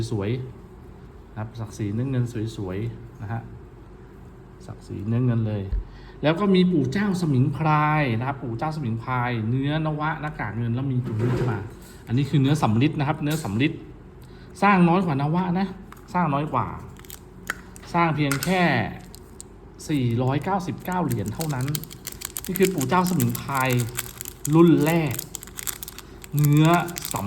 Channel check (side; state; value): both; identical; correlation 1.00